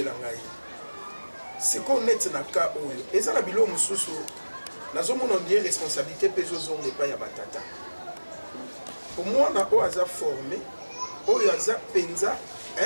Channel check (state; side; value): inverted; both; correlation -1.00